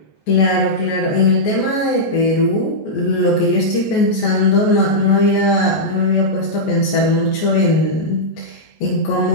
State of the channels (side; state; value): right; late; 14 ms